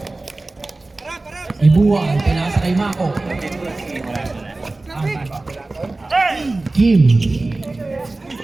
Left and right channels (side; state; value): left; quieter; 3.1 dB